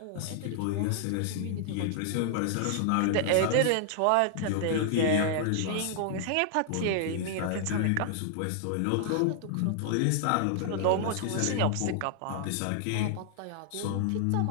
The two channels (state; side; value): different; both; correlation -0.01